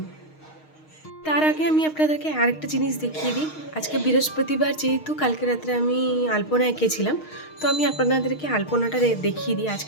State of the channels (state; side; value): late; right; 6.4 ms